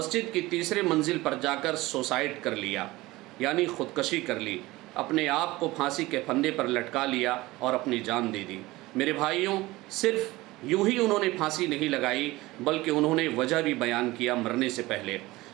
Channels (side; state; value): left; quieter; 19.6 dB